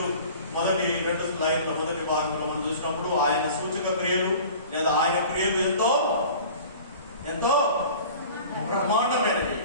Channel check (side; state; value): both; inverted; correlation -0.43